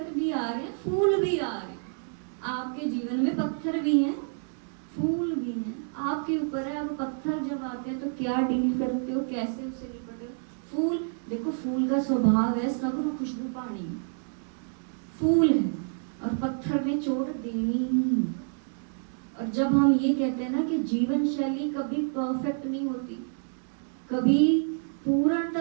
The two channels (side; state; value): left; silent; digital silence